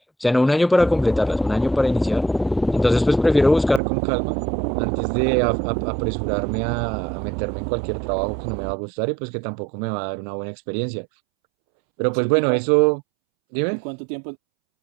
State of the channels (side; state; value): left; drops out; at 3.8 s